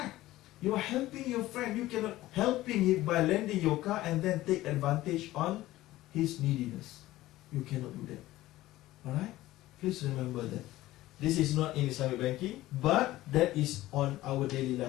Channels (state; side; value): quieter; right; 16.4 dB